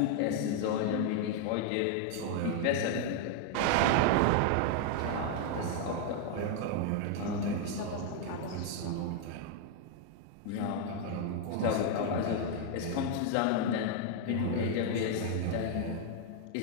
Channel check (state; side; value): different; both; correlation 0.00